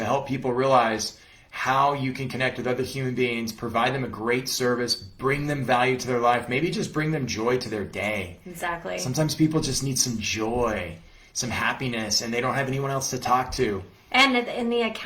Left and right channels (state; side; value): identical; both; correlation 1.00